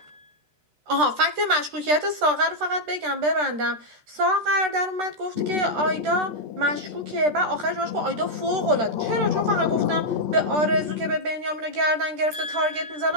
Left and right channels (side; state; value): left; late; 13 ms